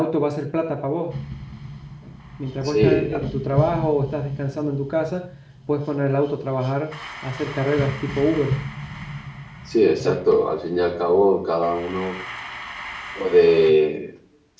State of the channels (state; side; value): identical; both; correlation 1.00